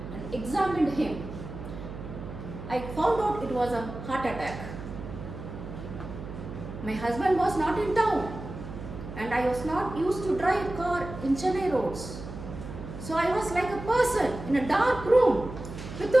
and examined him. I found out it was a heart attack. My husband was not in town and I was not used to drive a car in Chennai roads. So I was like a person in a dark room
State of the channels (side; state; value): right; noise; hum, 10 dB below the sound